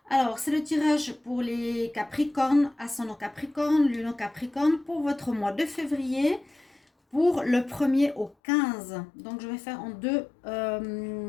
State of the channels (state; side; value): drops out; right; at 8.3 s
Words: Alors c'est le tirage pour les Capricornes, ascendant Capricorne, lune en Capricorne pour votre mois de février pour le 1er au 15. Donc je vais faire en deux